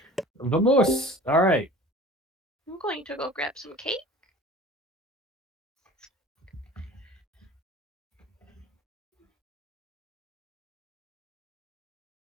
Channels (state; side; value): normal; both; correlation 0.42